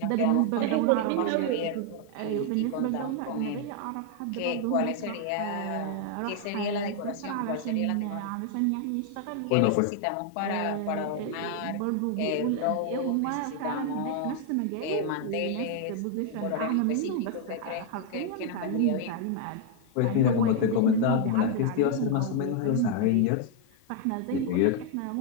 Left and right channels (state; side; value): different; both; correlation 0.00